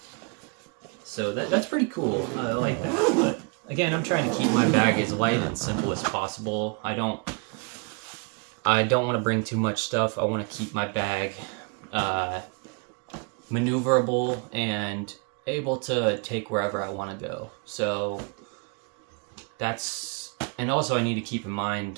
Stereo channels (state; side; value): quieter; left; 34.3 dB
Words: So that's pretty cool. I like that. But again, I'm trying to keep my bag as light and simple as possible. I don't want to bring too much stuff. I want to keep my bag maneuverable and able to take wherever I want to go. So that's, and also I need to keep in